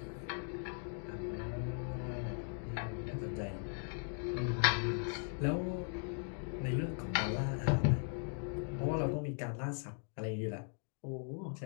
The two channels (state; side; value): silent; right; 52 dB below the other